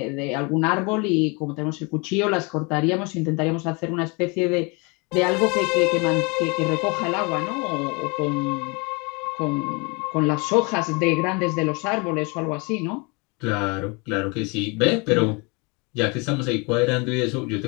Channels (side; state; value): right; quieter; 29.6 dB